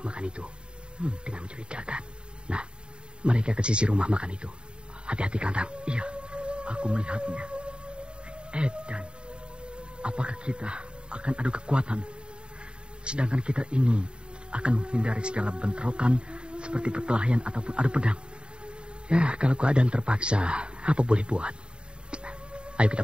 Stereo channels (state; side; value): late; left; 0.052 ms